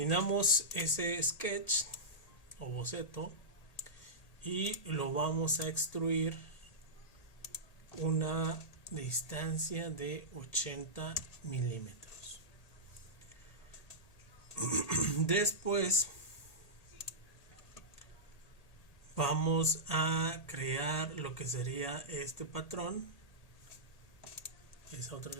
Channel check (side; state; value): right; late; 1.8 ms